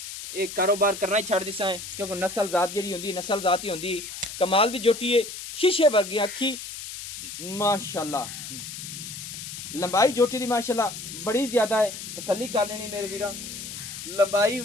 ये कारोबार करना ही छड़ दिसां है, क्योंकि नस्ल जात जेहड़ी हुंदी नस्ल जात ही हुंदी। कमाल दी जोटी है, शीशे वर्गी अखी माशाल्लाह। लंबाई जोटी दी माशाल्लाह बड़ी ज़्यादा है, तसल्ली कर लेनी मेरे वीरां। लंबाई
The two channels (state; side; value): noise; left; hiss, 9 dB below the sound